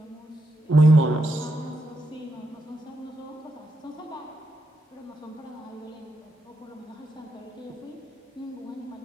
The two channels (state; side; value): normal; both; correlation 0.83